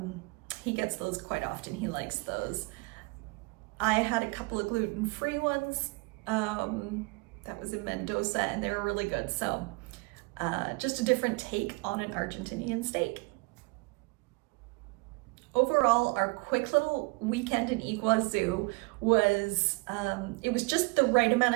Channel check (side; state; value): left; quieter; 28.3 dB